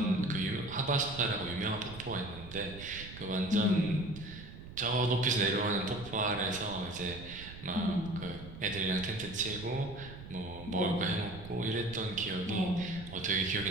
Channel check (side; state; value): right; noise; rumble, 14 dB below the sound